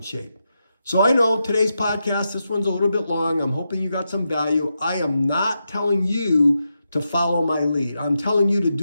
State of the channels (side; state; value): both; inverted; correlation -0.86